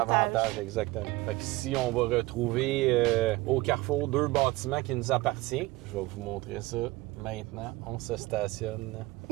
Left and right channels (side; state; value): left; quieter; 20.5 dB